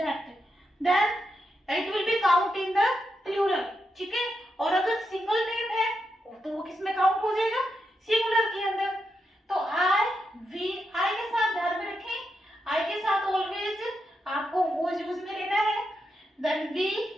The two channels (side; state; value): both; normal; correlation 0.85